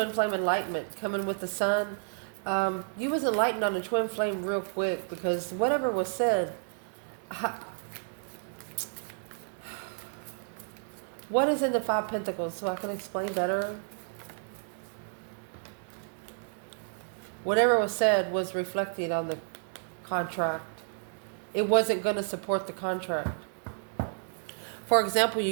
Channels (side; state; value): left; silent; digital silence